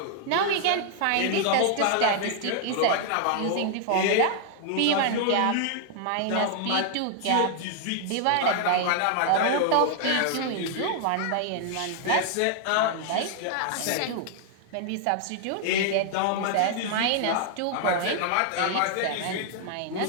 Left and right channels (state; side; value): different; both; correlation 0.00